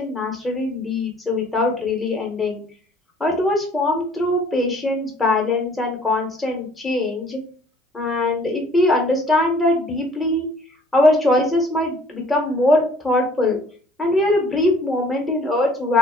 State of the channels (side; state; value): both; normal; correlation 0.56